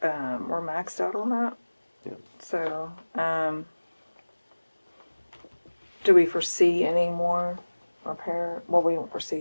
we're maxed out on that. So, do we foresee any more repair? Well, we don't foresee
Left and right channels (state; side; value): inverted; both; correlation -1.00